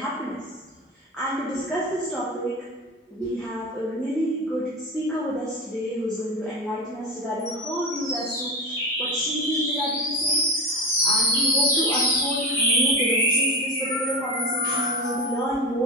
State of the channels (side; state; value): both; normal; correlation 0.23